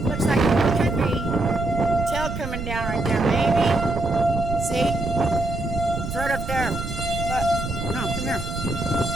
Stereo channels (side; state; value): right; noise; rumble, 6 dB below the sound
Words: Looks like it could be tail coming down right there. Maybe. See? It's right up there. Look. No, come here.